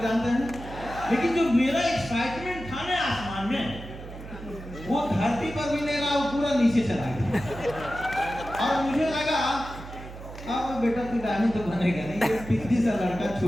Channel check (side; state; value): right; noise; hum, 13 dB below the sound